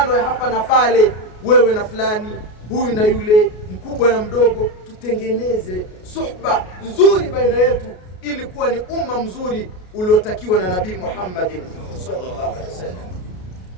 ya hapa na pale, wewe na fulani, huyu na yule, mkubwa na mdogo. Tutengeneze suhba nzuri baina yetu ili kuwa ni umma mzuri uliotakiwa na Nabii Muhammad sallallahu alaihi wasallam.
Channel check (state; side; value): late; right; 33 ms